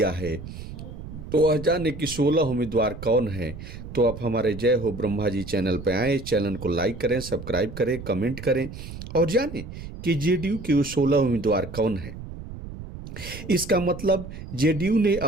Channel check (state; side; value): noise; right; rumble, 11 dB below the sound